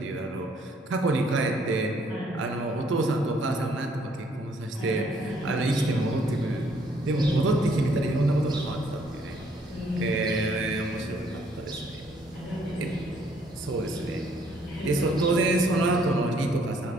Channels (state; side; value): normal; both; correlation 0.65